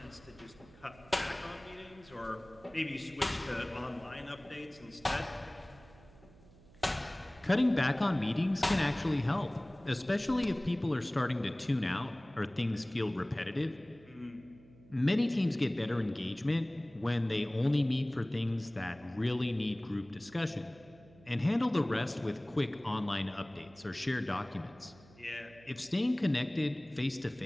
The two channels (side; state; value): right; noise; hum, 24 dB below the sound